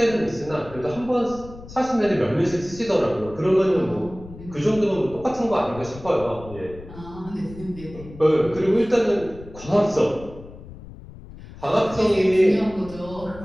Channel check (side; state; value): left; noise; rumble, 17 dB below the sound